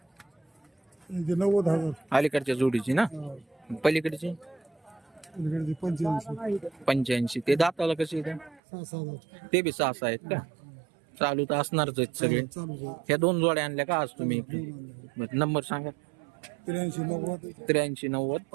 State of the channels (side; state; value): left; drops out; at 8.6 s